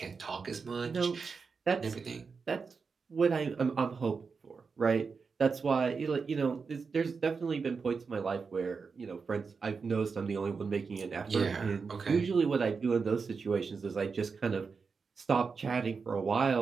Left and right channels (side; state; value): left; quieter; 5.1 dB